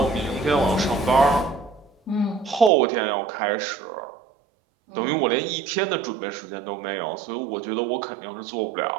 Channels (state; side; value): drops out; left; at 2.7 s